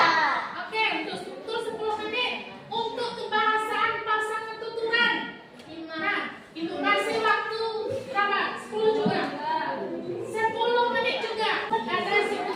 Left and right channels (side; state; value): both; identical; correlation 1.00